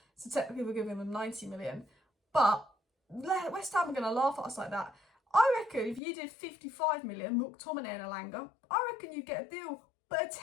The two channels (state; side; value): drops out; right; at 6.0 s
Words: So technically we're giving them 90 million. But West Ham are going to laugh at us like that. I reckon if you did 55 million, McTominay and Elanga, I reckon you'd get a deal